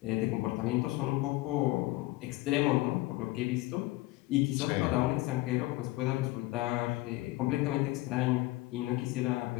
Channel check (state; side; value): quieter; right; 19.3 dB